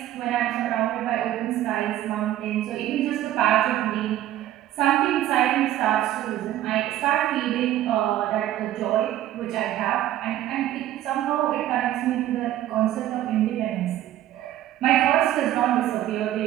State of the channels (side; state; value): left; quieter; 13.2 dB